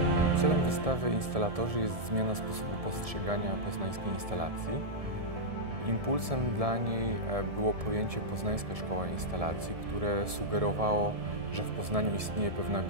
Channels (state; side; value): late; left; 1.7 ms